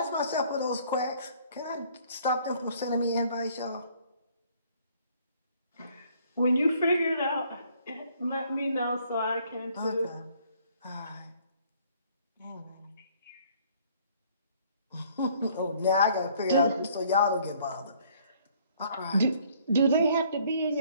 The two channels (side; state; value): both; inverted; correlation -0.60